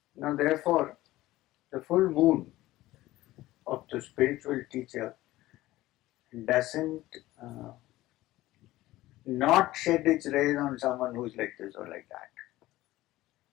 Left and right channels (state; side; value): quieter; right; 16.9 dB